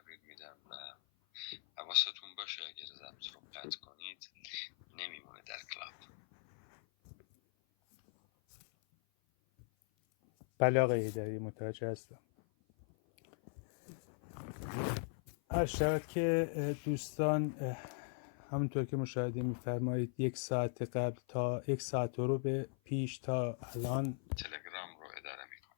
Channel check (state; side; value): silent; right; 52 dB below the other